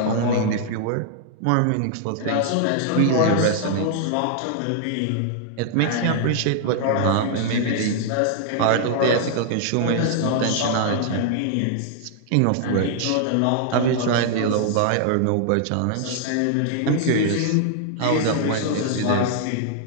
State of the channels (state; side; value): different; both; correlation -0.01